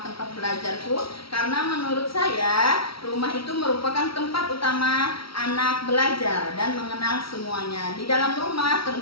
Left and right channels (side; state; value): right; late; 0.75 ms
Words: Tempat Belajarku? Karena menurut saya rumah itu merupakan tempat utama anak belajar dan mengenal semuanya. Di dalam rumah